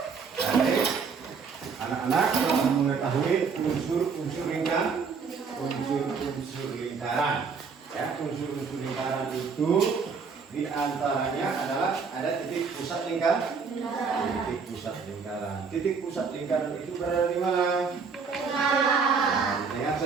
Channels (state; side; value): quieter; left; 5.4 dB